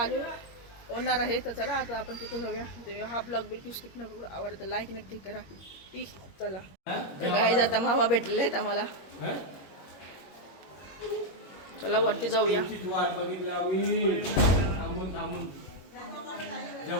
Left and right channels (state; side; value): late; right; 21 ms